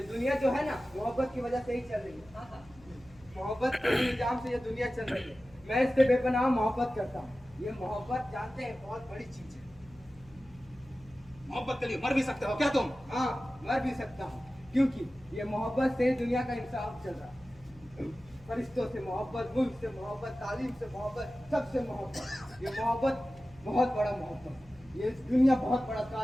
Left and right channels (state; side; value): noise; left; hum, 24 dB below the sound